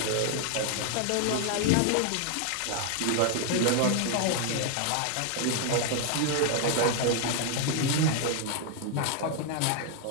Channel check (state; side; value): different; both; correlation 0.00